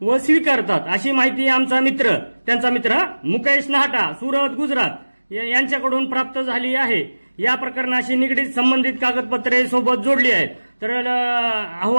व स्वीकारतात, अशी माहिती आमचा मित्र, त्यांचा मित्र मुकेश नाहटा, सुरत, गुजरात यांच्याकडून प्राप्त झाली आहे. या प्रकरणाशी निगडीत संबंधित कागदपत्रे सोबत जोडली आहेत. तर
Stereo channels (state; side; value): inverted; both; correlation -1.00